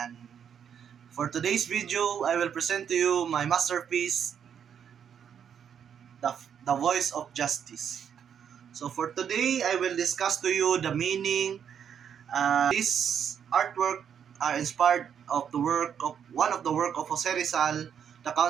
for today's video, I will present to you my masterpiece, the Voice of Justice. So for today, I will discuss to you the meaning. This artwork are inspired of the work of one of the work of Jose Rizal, the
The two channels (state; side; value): quieter; left; 8.1 dB